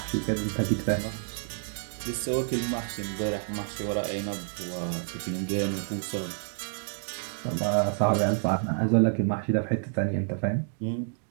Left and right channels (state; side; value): silent; left; 59 dB below the other